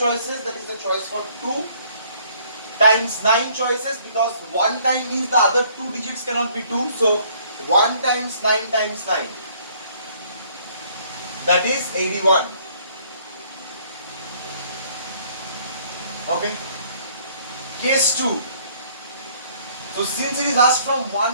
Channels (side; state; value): both; inverted; correlation -0.61